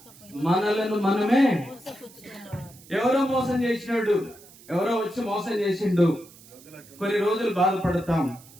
మనలను మనమే ఎవరో మోసం చేసినాడు, ఎవరో వచ్చి మోసం చేసిండు, కొన్ని రోజులు బాధపడతాం.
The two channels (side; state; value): right; noise; hiss, 23 dB below the sound